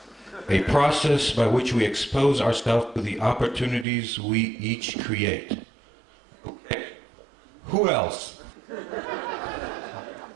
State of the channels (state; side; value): drops out; left; at 3.9 s